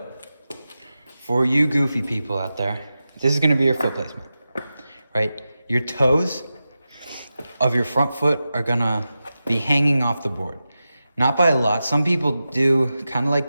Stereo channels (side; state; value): both; inverted; correlation -0.93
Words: for you goofy people out there, this is going to be your foot placement, right? Your toes of your front foot are going to be hanging off the board. Not by a lot. Some people do kind of